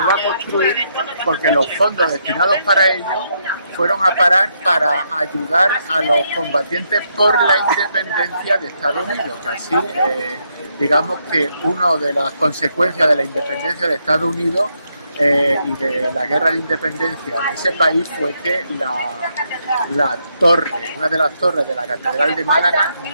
a construir porque los fondos destinados para ello fueron a parar para ayudar a los combatientes por la independencia de Estados Unidos, que así digamos que una de las consecuencias de la independencia de Estados Unidos y de la guerra de independencia de ese país fue que la torre, una de las torres de la Catedral de Málaga,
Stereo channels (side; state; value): both; inverted; correlation -0.77